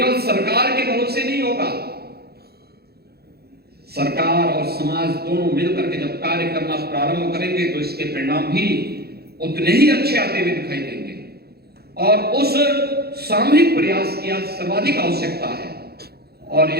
सरकार के भरोसे नहीं होगा, सरकार और समाज दोनों मिलकर के जब कार्य करना प्रारंभ करेंगे तो इसके परिणाम भी उतने ही अच्छे आते हुए दिखाई देंगे। और उस सामूहिक प्रयास की आज सर्वाधिक आवश्यकता है और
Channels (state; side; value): late; left; 0.46 ms